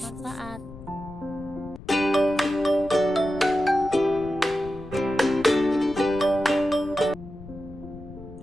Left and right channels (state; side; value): noise; left; rumble, 16 dB below the sound